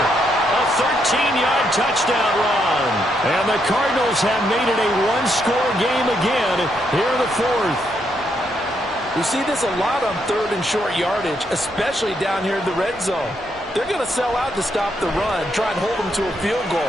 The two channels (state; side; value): normal; both; correlation 0.77